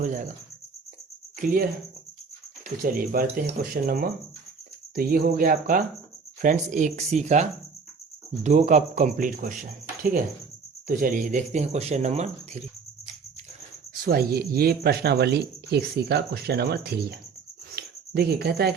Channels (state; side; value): quieter; left; 5.2 dB